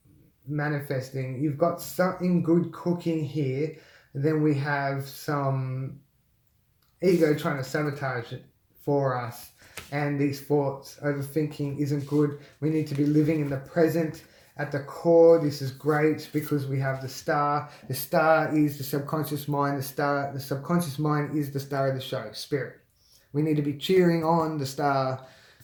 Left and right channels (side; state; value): both; identical; correlation 1.00